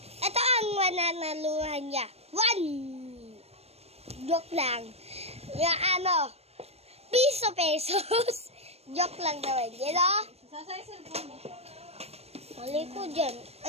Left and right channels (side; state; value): left; late; 0.30 ms